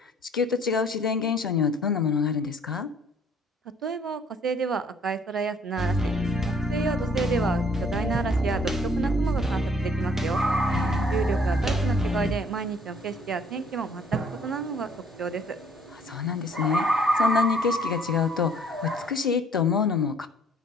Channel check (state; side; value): normal; both; correlation 0.60